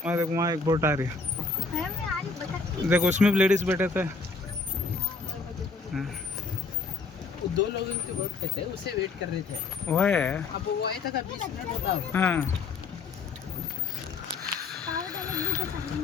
वहाँ देखो, वहाँ एक बोट आ रही है। देखो उसमें भी लेडीज बैठे थे। दो लोग इनके बोट पे थे, उसे वेट कर रहे थे। वो है। अब वो आया था 20 मिनट होता। हाँ।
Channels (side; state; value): right; quieter; 4.2 dB